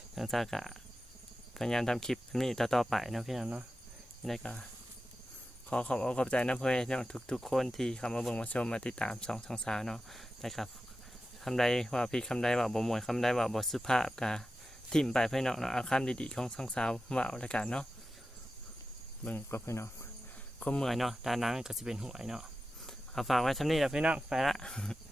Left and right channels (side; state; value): both; normal; correlation 0.92